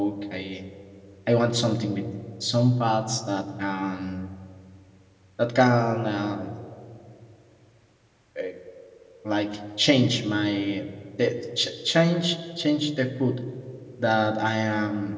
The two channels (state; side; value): identical; both; correlation 1.00